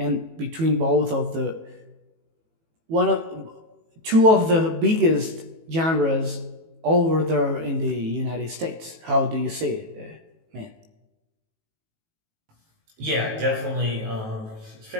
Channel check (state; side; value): late; left; 18 ms